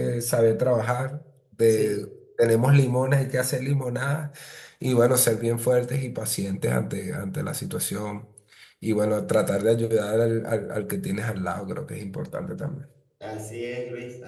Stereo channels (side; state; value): both; identical; correlation 1.00